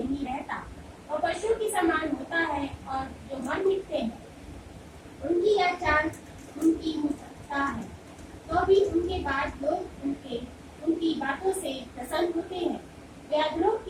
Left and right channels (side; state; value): both; identical; correlation 1.00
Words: रहता और पशु के समान होता है। और जो मर मिटते हैं उनकी यह चाल उनकी मुक्ता है, तो भी उनके बाद लोग उनकी बातों से प्रसन्न होते हैं। वे अधरों